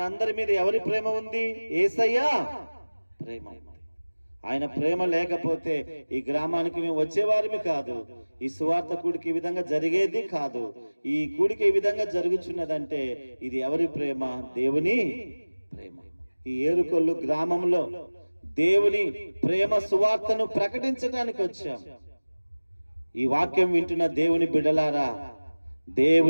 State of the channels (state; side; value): inverted; both; correlation -1.00